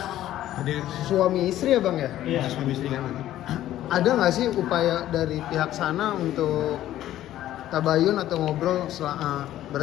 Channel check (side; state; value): right; quieter; 13.2 dB